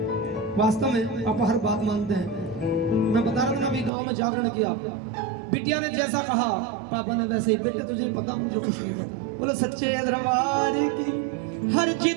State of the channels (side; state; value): left; drops out; at 3.9 s